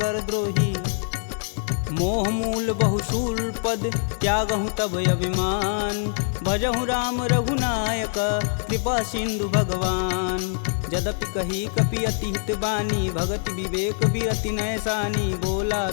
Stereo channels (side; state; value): right; silent; 62 dB below the other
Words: द्रोही। मोह मूल बहुशूल पद, त्यागहु तब अभिमान। भजहु राम रघुनायक, कृपा सिंधु भगवान। यद्यपि कही कपि अति हित बानी, भगति विवेक बिरति नैसानी। बोला